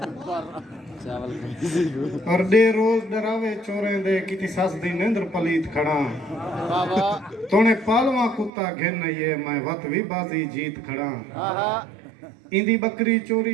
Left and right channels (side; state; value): left; drops out; at 8.5 s